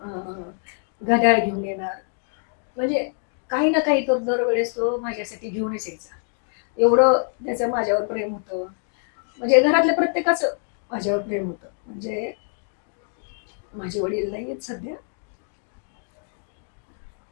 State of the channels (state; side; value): silent; right; 57 dB below the other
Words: घड्याळ घेऊन येणार. म्हणजे काही ना काही तर दरवेळेस तो माझ्यासाठी घेऊनच यायचा. एवढं त्याचं माझ्यावर प्रेम होतं. म्हणजे घरातल्या प्रत्येकाचं माझ्यावर प्रेम होतं. म्हणजे माझे वडील नाही आहेत सध्या.